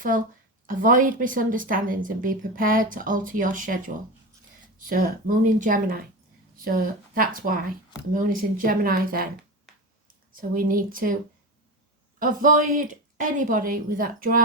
avoid misunderstandings and be prepared to alter your schedule. So moon in Gemini. So that's why the moon is in Gemini then. So we need to avoid anybody with that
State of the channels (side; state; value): both; normal; correlation 0.23